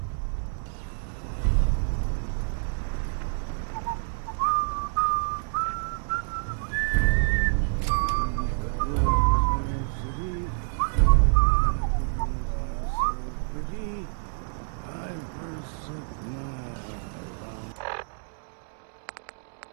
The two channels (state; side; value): silent; left; digital silence